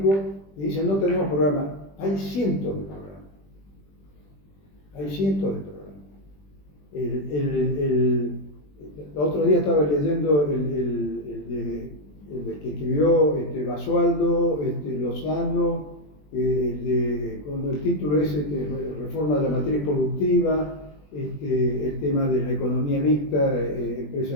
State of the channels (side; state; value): right; late; 20 ms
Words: dicen no tenemos programa. Hay cientos de programas. Hay cientos de programas. El otro día estaba leyendo el que escribió Basualdo, Lozano, cuando el título es Reforma de la matriz productiva, el tema de la economía mixta,